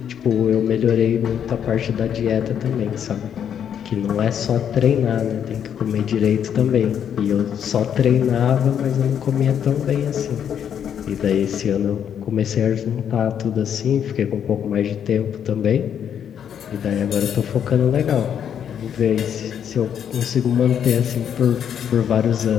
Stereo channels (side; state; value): right; quieter; 8.8 dB